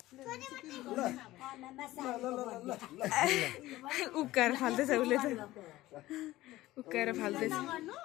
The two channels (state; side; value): quieter; right; 16.9 dB